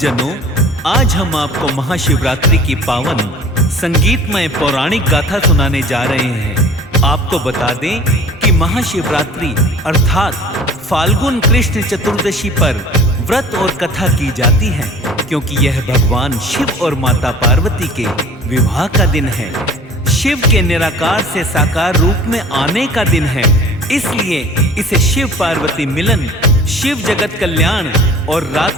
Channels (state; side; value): normal; both; correlation 0.46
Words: आज हम आपको महाशिवरात्रि की पावन संगीतमय पौराणिक गाथा सुनाने जा रहे हैं। आपको बता दें कि महाशिवरात्रि अर्थात फाल्गुन कृष्ण चतुर्दशी पर व्रत और कथा की जाती है, क्योंकि यह भगवान शिव और माता पार्वती के विवाह का दिन है। शिव के निराकार से साकार रूप में आने का दिन है, इसलिए इसे शिव पार्वती मिलन, शिव जगत कल्याण और